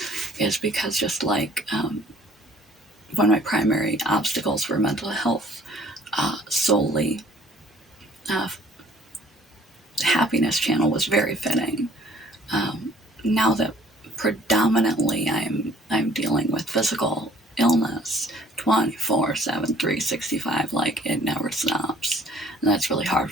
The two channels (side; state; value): both; normal; correlation 0.56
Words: is because just like one of my primary obstacles for mental health solely, happiness channel was very fitting. Now that predominantly I'm dealing with physical illness 24/7, 365, like it never stops. And that's really hard